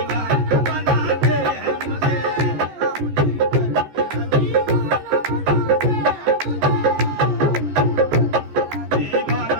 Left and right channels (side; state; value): left; late; 14 ms